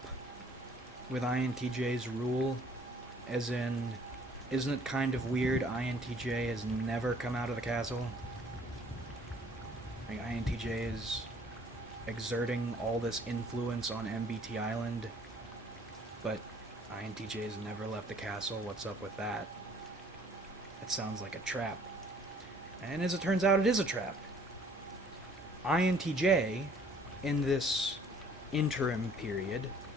with INTJ's rule, as in, isn't it kind of weird INTJ has never come out of the castle? Like, INTJ is exerting all this influence on MBT Island, but INTJ has never left the castle. What's up with that? That sounds like a trap. And as it turns out, it is a trap. INTJ, in this interim period,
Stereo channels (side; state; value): both; normal; correlation 0.57